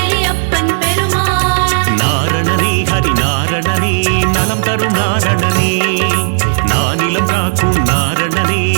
நாரணனே ஹரி நாரணனே நலம் தரும் நாரணனே நானிலம் காக்கும் நாரணனே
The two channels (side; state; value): left; silent; digital silence